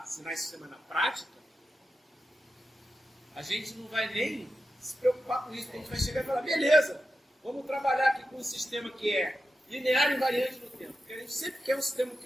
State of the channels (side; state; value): both; normal; correlation 0.90